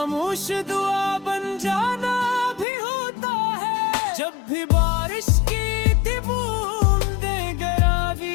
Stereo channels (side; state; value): right; drops out; at 2.7 s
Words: दुआ बन जाना भी होता है। जब भी बारिश की थी बूंदें